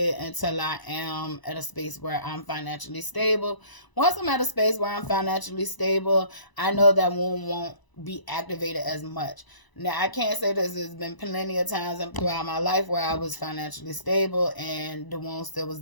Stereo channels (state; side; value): late; right; 1.0 ms